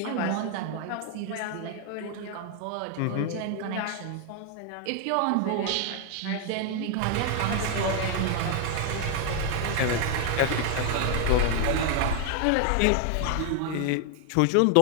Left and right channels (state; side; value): different; both; correlation 0.00